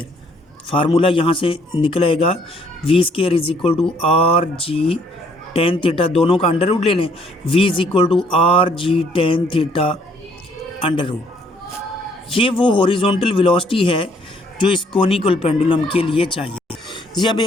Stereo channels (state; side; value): normal; both; correlation 0.65